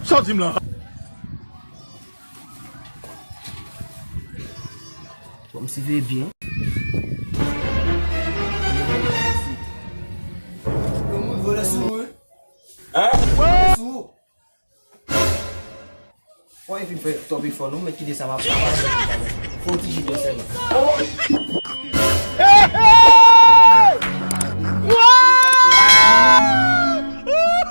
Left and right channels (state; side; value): inverted; both; correlation -1.00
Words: Sortim là. Comme si veut bien. Gomun vole sou. Hein? Sou. Why if you fè top before nou, men ki de sa ma pa. Faut ti jide se la. Wow!